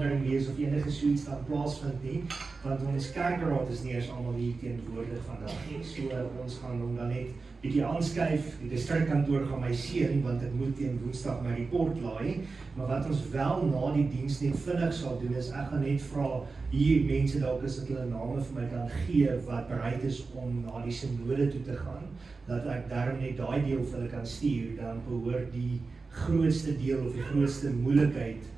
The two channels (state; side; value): quieter; left; 4.1 dB